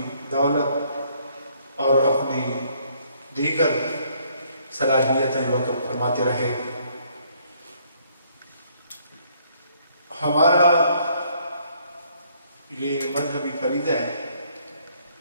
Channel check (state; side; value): inverted; both; correlation -0.66